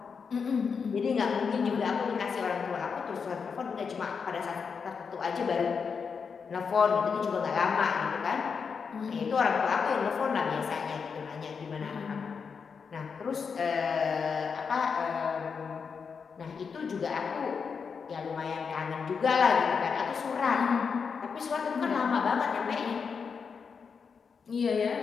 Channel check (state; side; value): quieter; right; 5.9 dB